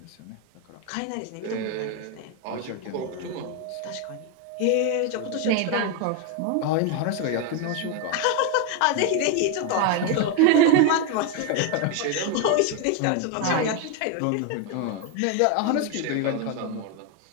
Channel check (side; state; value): both; different; correlation 0.01